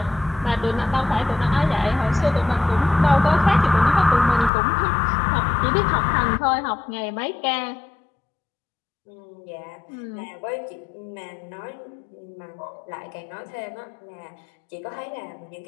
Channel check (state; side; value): drops out; right; at 4.5 s